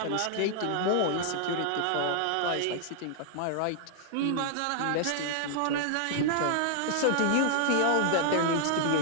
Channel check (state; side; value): different; both; correlation -0.01